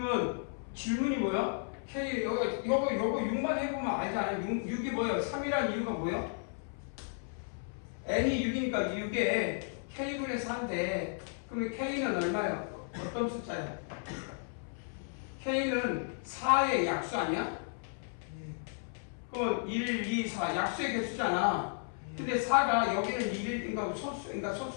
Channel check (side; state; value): right; silent; 55 dB below the other